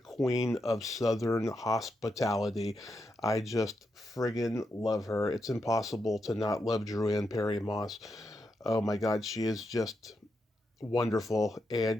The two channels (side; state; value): both; normal; correlation 0.84